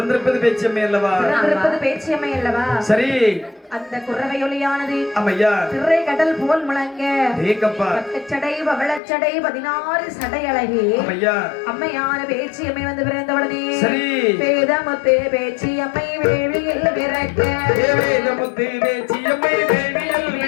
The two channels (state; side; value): drops out; right; at 9.0 s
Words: பேச்சம்மே அல்லவா பிறந்திருப்பது பேச்சியம்மை அல்லவா சரி அந்த குறவையொலியானது அம்மையா திரை கடல் போல் முழங்க ஏங்கப்பா பக்கச்சடை பவளச்சடை 16 சடை அழகி அம்மையா அம்மையான பேச்சியம்மை வந்து பிறந்தவுடனே சரி வேதமுத்து பேச்சியம்மை வேள்வியில் பிறக்க வேதமுத்து பேச்சியம்மை வேள்வியில்